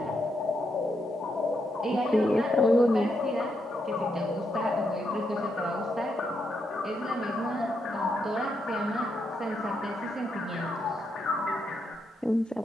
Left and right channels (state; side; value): normal; both; correlation 0.80